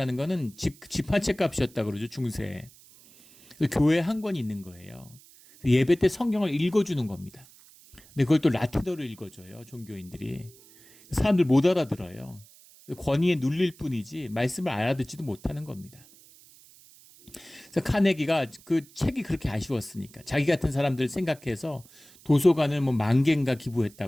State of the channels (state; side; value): noise; right; hiss, 24 dB below the sound